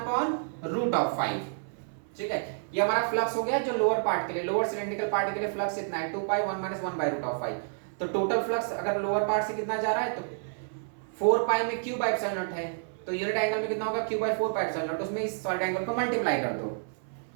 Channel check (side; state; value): left; silent; 58 dB below the other